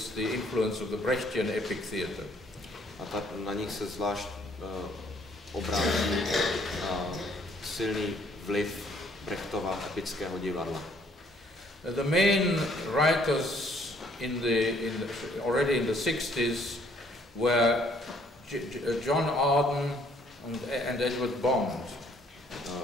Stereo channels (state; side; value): normal; both; correlation 0.64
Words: the influence of the Brechtian epic theatre. A na nich se zvlášť obrází silný vliv Brechtova epického divadla. The main writers already in the 60s were John Arden and Edward Bond.